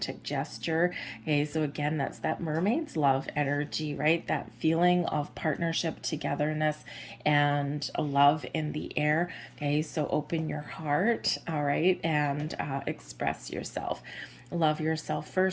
gesture. Okay, so again, that's that mermaid's love energy, right? That feeling of partnership, togetherness, and a love in the air. Okay, so open your heart, all right, and express yourself. Love yourself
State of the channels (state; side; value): identical; both; correlation 1.00